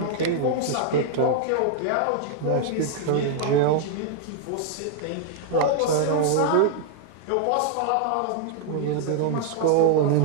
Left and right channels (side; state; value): both; different; correlation 0.00